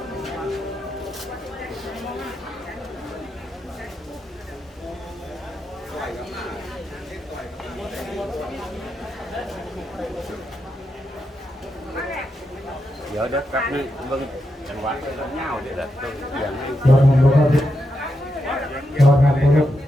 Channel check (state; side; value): normal; both; correlation 0.85